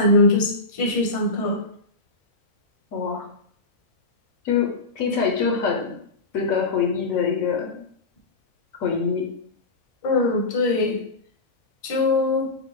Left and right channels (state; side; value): quieter; right; 3.2 dB